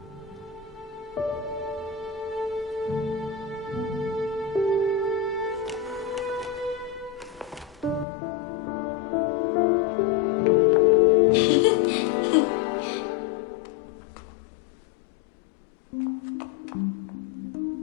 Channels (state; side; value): drops out; right; at 8.1 s